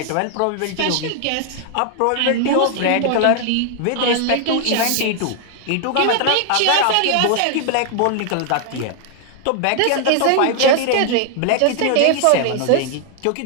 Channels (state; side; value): different; both; correlation 0.00